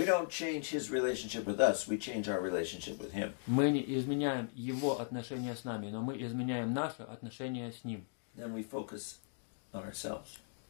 don't change His relationship with us, we change our relationship with Him. мы не изменяем Его отношения с нами, но мы изменяем наши отношения с Ним. Then we focus on ourselves.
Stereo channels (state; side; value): silent; right; digital silence